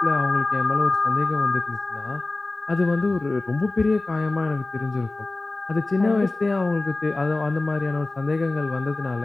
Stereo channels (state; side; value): quieter; right; 3.1 dB